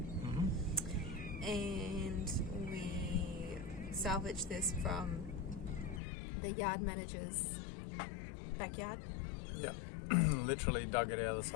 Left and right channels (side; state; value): right; drops out; at 6.0 s